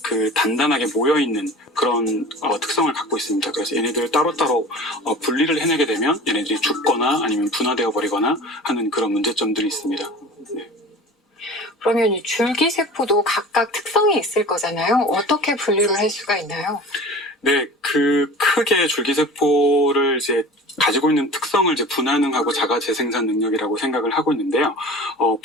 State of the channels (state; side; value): normal; both; correlation 0.38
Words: 단단하게 모여 있는 그런 특성을 갖고 있습니다. 그래서 얘네들을 따로따로 분리를 해내게 되면 얘네들이 죽거나 아니면 분화되어 버리거나 하는 그런 문제점들이 있습니다. 그러면 이 줄기세포도 각각 특성이 있을 거잖아요. 어떻게 분류를 할 수가 있나요? 네, 크게 줄기세포를 이제 가지고 있는 특성을 이제 분화능하고 자가 재생산 능력이라고 생각을 하고 있는데요.